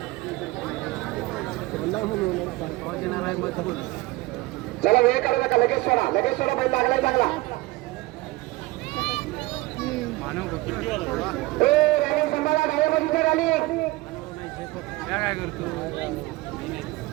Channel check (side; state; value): left; quieter; 20.6 dB